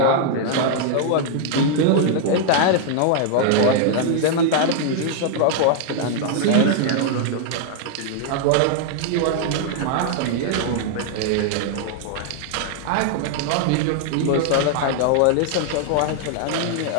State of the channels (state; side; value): different; both; correlation 0.00